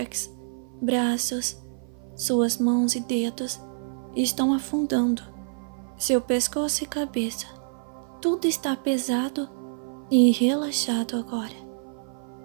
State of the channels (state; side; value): silent; left; 55 dB below the other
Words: braços, suas mãos e dedos estão afundando. Seu pescoço e cabeça, tudo está pesado e relaxado agora.